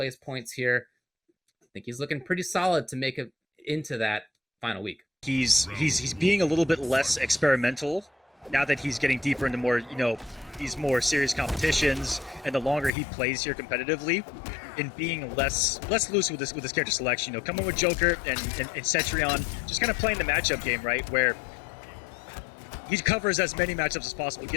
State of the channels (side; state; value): right; drops out; at 12.9 s